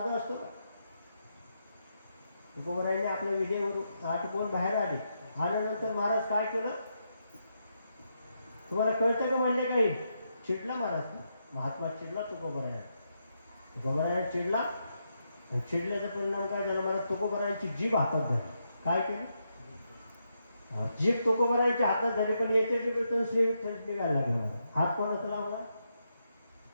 असतो का? तुकोबरायने आपल्या विधेवरून आटपून बाहेर आले. आल्यानंतर महाराज काय केलं तुम्हाला कळतं का म्हणले? काही चिडला महाराज, महात्मा चिडला तुकोबराय. तुकोबाराया चिडला आणि चिडल्याचा परिणाम काय झाला, मला तुकोबारायांची जीभ हातात धरली. काय केली? जीभ तुकोबारायांच्या हातात झाली, पण याच्या जीभेतून श्री विठ्ठल निघायला लागला. मला हात कोणाचा लावला?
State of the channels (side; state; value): both; inverted; correlation -0.82